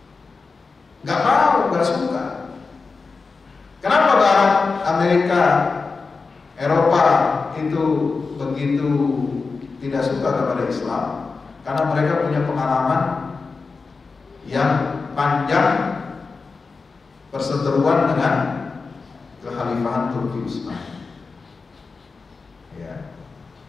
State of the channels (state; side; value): quieter; right; 4.4 dB